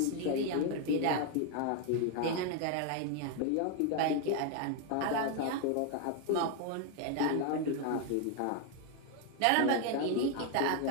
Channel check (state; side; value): different; both; correlation 0.01